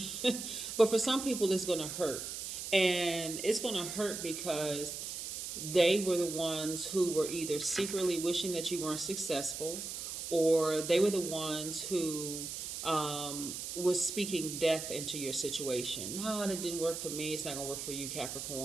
But for some people, it's going to hurt. And it's going to hurt because they were the ones who were either secretly wishing that you weren't successful, or they were the ones who was speaking death into your situation. No, it didn't work for me. It's not going to work for you,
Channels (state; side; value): noise; right; hiss, 6 dB below the sound